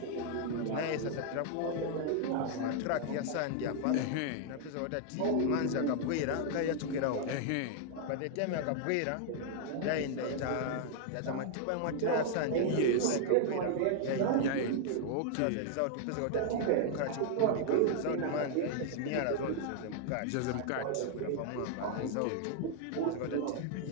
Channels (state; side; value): different; both; correlation 0.00